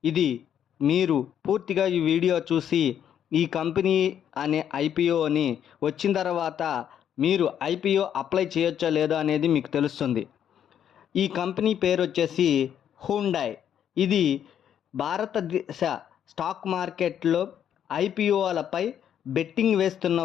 ఇది మీరు పూర్తిగా ఈ వీడియో చూసి ఈ కంపెనీ అనే ఐపీఓని వచ్చిన తర్వాత మీరు ఐపీఓ అప్లై చేయొచ్చో లేదో అనేది మీకు తెలుస్తుంది. ఈ కంపెనీ పేరు వచ్చేసి హ్యుండై. ఇది భారతదేశ స్టాక్ మార్కెట్లో ఐపీఓలపై బెట్టింగ్ వేస్తున్న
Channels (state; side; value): quieter; right; 9.4 dB